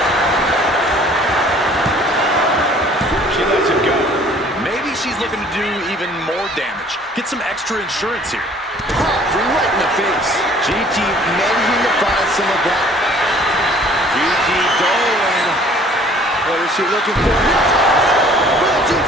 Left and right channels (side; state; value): both; normal; correlation 0.54